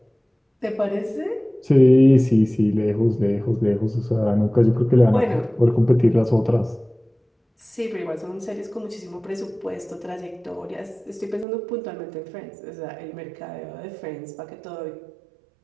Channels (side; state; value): left; drops out; at 11.5 s